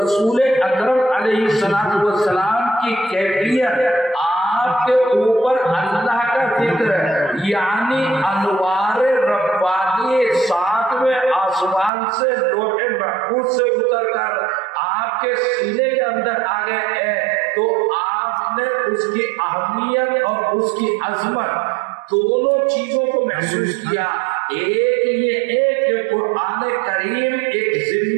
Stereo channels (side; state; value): left; drops out; at 11.9 s